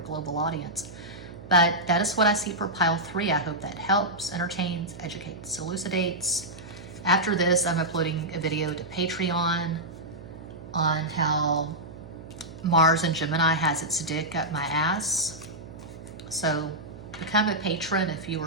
global audience. But that is what I see for pile 3. I hope that helps, entertains, educates, elucidates. After this, I'm uploading a video to Patreon on how Mars and Gemini has its dick up my ass. So become a patron if you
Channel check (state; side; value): noise; right; hum, 15 dB below the sound